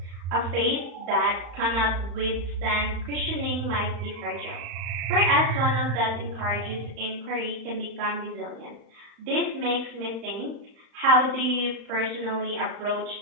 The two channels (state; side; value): late; left; 34 ms